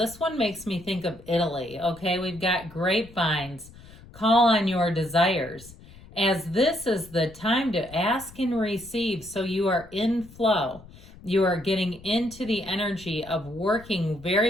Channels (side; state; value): left; noise; rumble, 20 dB below the sound